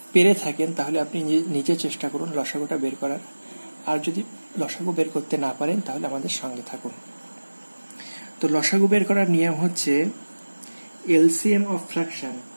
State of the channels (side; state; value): both; inverted; correlation -1.00